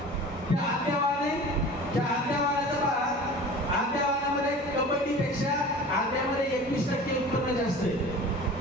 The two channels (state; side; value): normal; both; correlation 0.40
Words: त्या आद्यावाने, त्या आद्यावानाचं पहा, आद्यावानामध्ये कबड्डीपेक्षा आद्यामध्ये 21% उत्पन्न जास्त आहे.